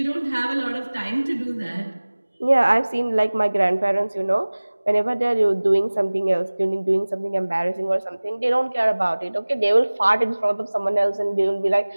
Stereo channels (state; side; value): inverted; both; correlation -1.00